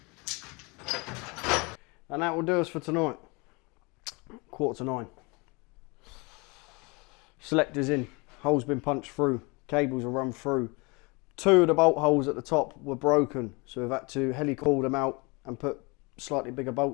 And that will do us for tonight. 8:45. Selector's in, holes been punched through, cables are run through. 2 of the bolt holes at the top were broken, so we've had to heli-coil them out and put slightly bigger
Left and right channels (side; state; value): right; quieter; 28.0 dB